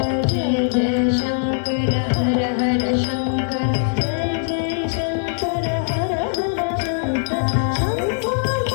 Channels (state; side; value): silent; right; digital silence